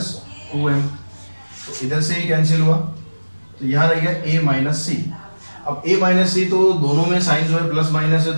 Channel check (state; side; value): inverted; both; correlation -1.00